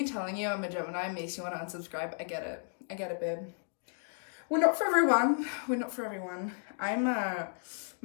telling you I'm a Gemini makes you want to unsubscribe, I get it, babe. We're not for everyone. I'm,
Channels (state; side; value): silent; right; digital silence